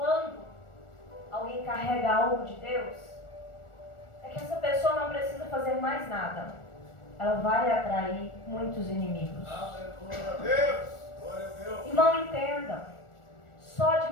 alguém carrega algo de Deus? É que essa pessoa não precisa fazer mais nada. Ela vai atrair muitos inimigos. Aleluia, Deus. Glória a Deus. Irmão, entenda. Só de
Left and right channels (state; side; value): late; right; 1.4 ms